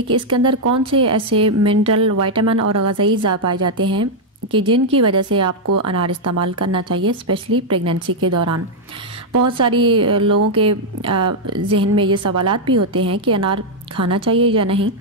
कि इसके अंदर कौन से ऐसे मिनरल, विटामिन और ग़िज़ाई अज़ा पाए जाते हैं कि जिनकी वजह से आपको अनार इस्तेमाल करना चाहिए, स्पेशली प्रेगनेंसी के दौरान। बहुत सारी लोगों के जहन में ये सवालात भी होते हैं कि अनार खाना चाहिए या नहीं,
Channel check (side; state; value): both; normal; correlation -0.02